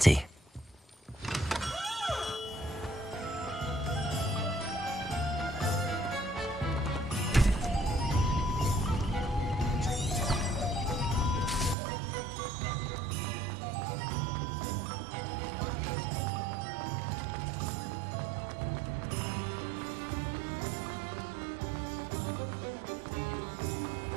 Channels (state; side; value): drops out; left; at 11.8 s